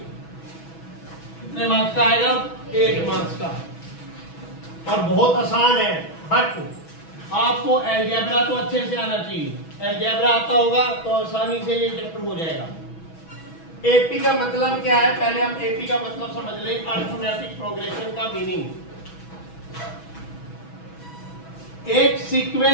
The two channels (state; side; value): late; right; 6.1 ms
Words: कितने मार्क्स का आएगा? 8 मार्क्स का। और बहुत आसान है, बट आपको अलजेब्रा तो अच्छे से आना चाहिए। अलजेब्रा आता होगा तो आसानी से ये चैप्टर हो जाएगा। एपी का मतलब क्या है? पहले हम एपी का मतलब समझ लें, अर्थमेटिक प्रोग्रेशन का मीनिंग। एक